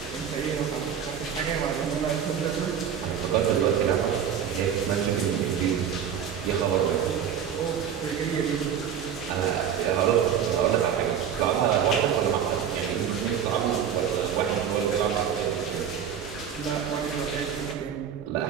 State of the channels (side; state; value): left; quieter; 8.3 dB